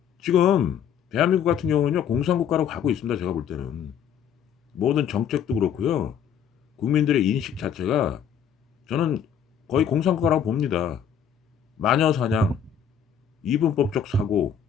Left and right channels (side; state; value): right; quieter; 8.2 dB